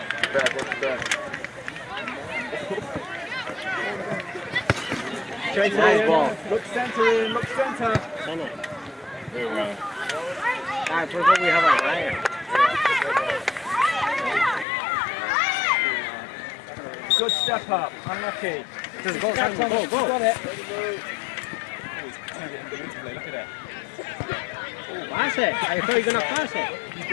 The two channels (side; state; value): right; drops out; at 14.7 s